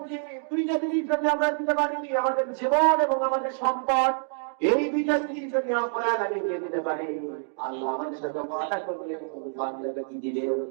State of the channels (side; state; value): left; silent; digital silence